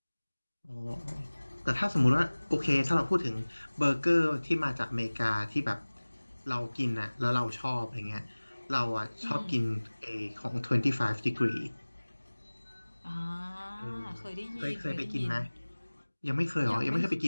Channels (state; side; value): inverted; both; correlation -1.00